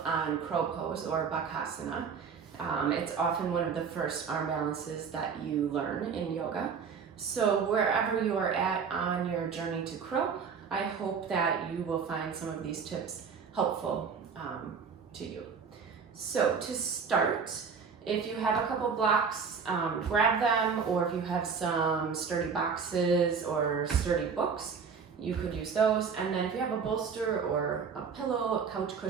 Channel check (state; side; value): quieter; left; 6.0 dB